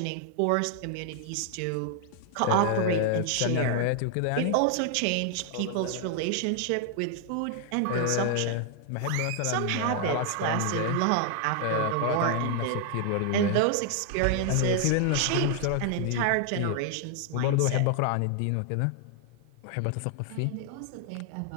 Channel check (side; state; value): both; different; correlation 0.00